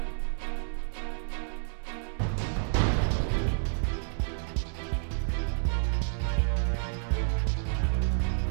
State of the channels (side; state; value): left; silent; digital silence